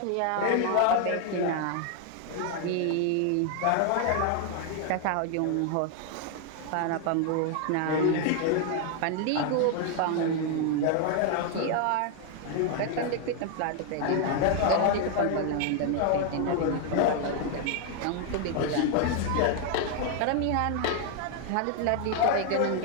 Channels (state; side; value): different; both; correlation 0.00